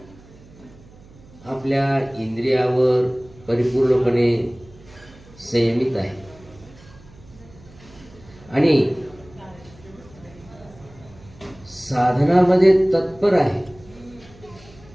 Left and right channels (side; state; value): right; noise; hum, 23 dB below the sound